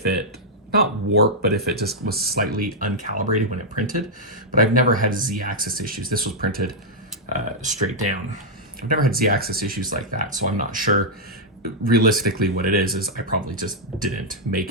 it, not warped, but if it just was slightly uncalibrated when it printed. But I've never had Z-axis issues. This was printed straight down. I've never had Z-axis issues like that, so I'm not sure. Realistically, what it is I probably just didn't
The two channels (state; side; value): normal; both; correlation -0.05